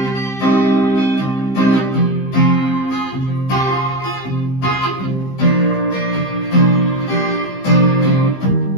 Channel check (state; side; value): late; right; 15 ms